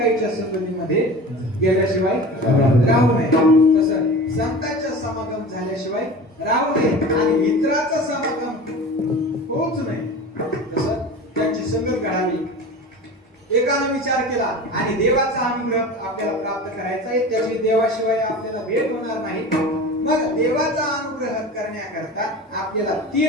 संगतीमध्ये गेल्याशिवाय राहू नये. तसं संतांच्या समागम झाल्याशिवाय राहू नये आणि इतरांचा समागम होऊच नये. तसं त्यांची संगत घडावी. एकानं विचार केला आणि देवाचा अनुग्रह आपल्याला प्राप्त करायचा आहे, त्याची देवाशिवाय आपल्याला भेट होणार नाही. मग देवाचा अनुग्रह करण्याकरता आपल्याला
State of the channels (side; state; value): both; normal; correlation 0.34